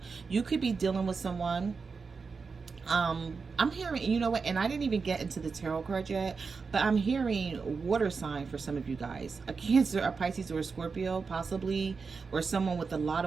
You could be dealing with someone. I'm hearing, you know what, and I didn't even get into the tarot card yet, but I'm hearing water sign for some of you guys. A Cancer, a Pisces, or a Scorpio, possibly, or someone with a lot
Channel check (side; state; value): left; quieter; 5.0 dB